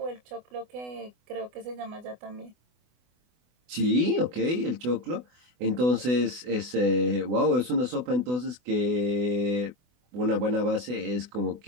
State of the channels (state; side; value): late; left; 24 ms